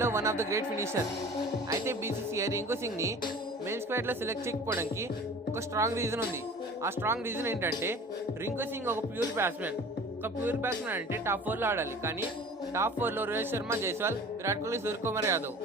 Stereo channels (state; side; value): normal; both; correlation 0.43